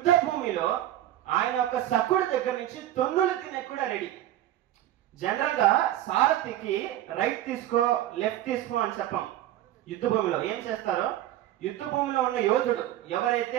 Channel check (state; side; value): quieter; left; 13.2 dB